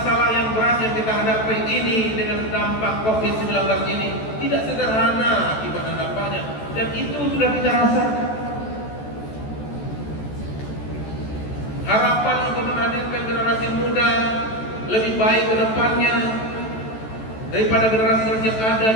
yang berat yang kita hadapi ini dengan dampak COVID-19 ini tidak sederhana akibat dan dampaknya, dan itu sudah kita rasakan. Harapan untuk menghadirkan generasi muda lebih baik ke depannya daripada generasi yang ada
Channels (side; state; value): right; late; 14 ms